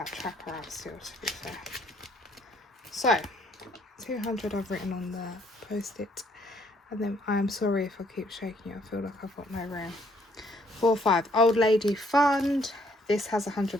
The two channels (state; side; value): normal; both; correlation 0.66